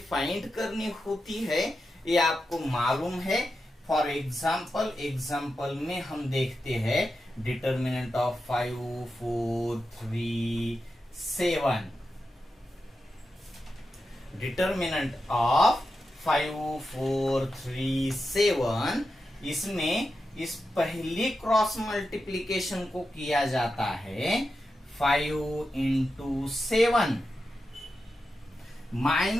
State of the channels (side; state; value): both; normal; correlation 0.89